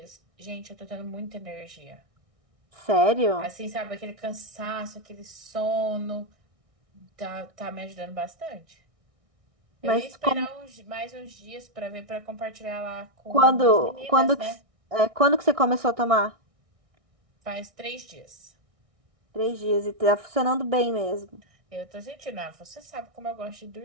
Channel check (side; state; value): left; late; 1.6 ms